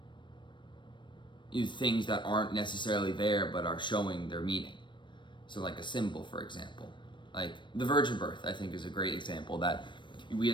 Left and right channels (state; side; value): late; right; 0.23 ms